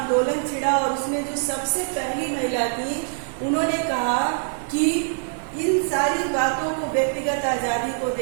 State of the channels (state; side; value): silent; left; digital silence